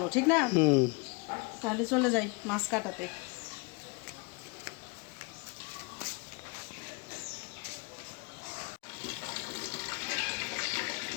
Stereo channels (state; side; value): quieter; right; 29.7 dB